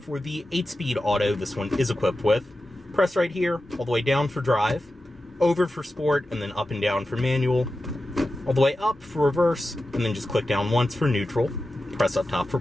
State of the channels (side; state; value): both; normal; correlation 0.92